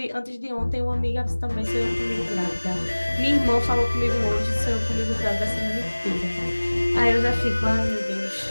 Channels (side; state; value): both; inverted; correlation -1.00